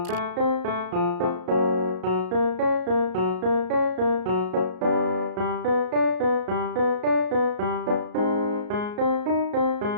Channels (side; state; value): left; late; 33 ms